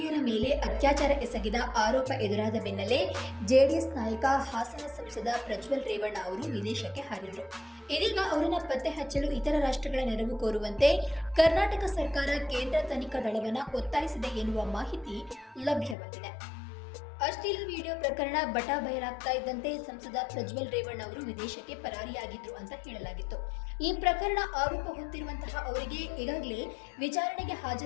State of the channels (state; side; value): drops out; right; at 16.0 s